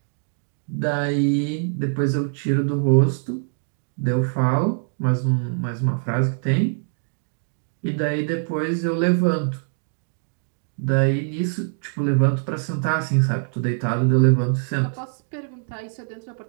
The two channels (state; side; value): silent; left; digital silence